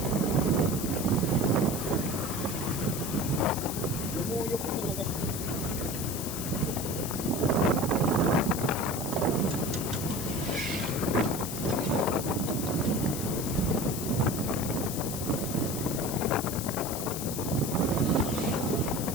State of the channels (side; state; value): left; noise; hiss, 6 dB below the sound